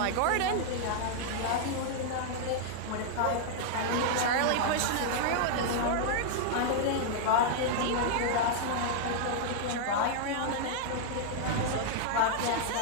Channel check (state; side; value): different; both; correlation -0.01